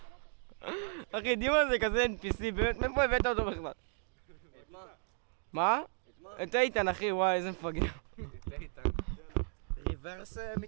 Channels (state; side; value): silent; left; 55 dB below the other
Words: אחי, דימה זה כזה NPC, באמת, מאיפה הבאת אותו בכלל? את מה? מה? את איתן אחי, וואי, איזה מפגר. את איתן. ריברס